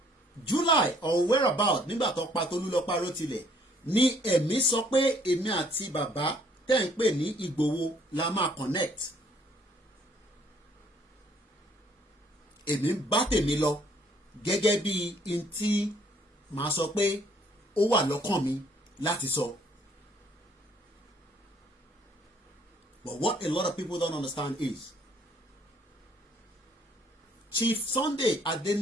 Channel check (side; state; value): both; normal; correlation 0.63